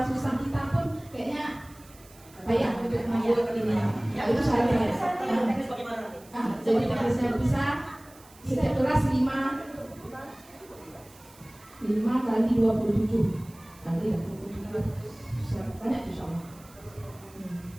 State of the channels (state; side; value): noise; right; hiss, 24 dB below the sound